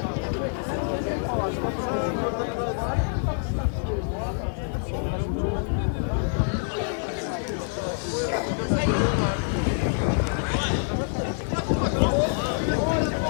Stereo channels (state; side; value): silent; right; 61 dB below the other